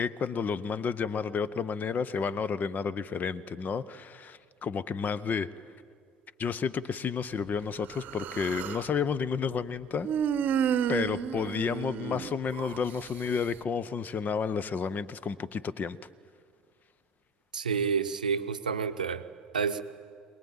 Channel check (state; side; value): normal; both; correlation 0.45